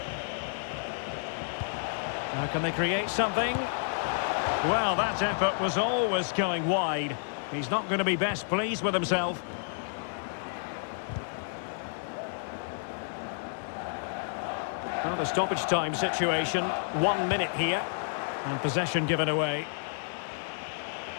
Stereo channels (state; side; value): silent; right; digital silence